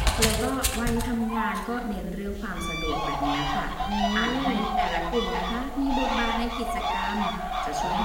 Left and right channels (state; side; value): identical; both; correlation 1.00